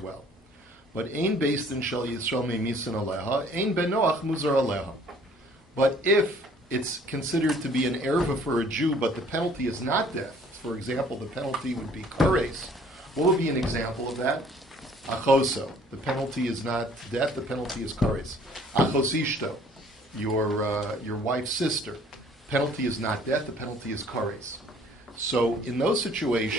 But ein beis-din shel Yisrael memisin aleha, ein ben Noach muzar aleha. But if it's considered to be an erva for a Jew, but the penalty is not death, for example, the penalty would be kares. What would be an example of that? Achoso. The penalty is not death, the penalty is kares. Achosishto, your wife's sister. Penalty is not death, the penalty is kares. So in those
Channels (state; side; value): normal; both; correlation 0.56